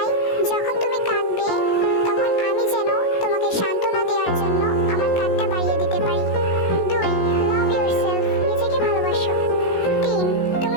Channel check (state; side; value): late; right; 16 ms